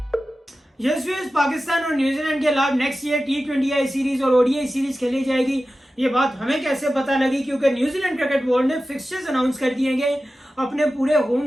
पाकिस्तान और न्यूजीलैंड के खिलाफ नेक्स्ट ईयर टी20 सीरीज और ओडीआई सीरीज खेली जाएगी। ये बात हमें कैसे पता लगी? क्योंकि न्यूजीलैंड क्रिकेट बोर्ड ने फिक्सचर्स अनाउंस कर दिए गए अपने पूरे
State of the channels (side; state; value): both; normal; correlation 0.94